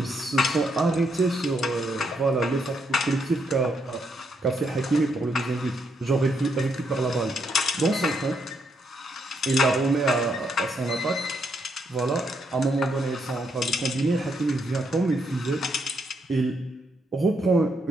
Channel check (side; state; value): both; normal; correlation 0.77